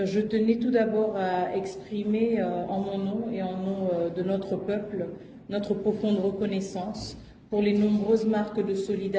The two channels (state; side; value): identical; both; correlation 1.00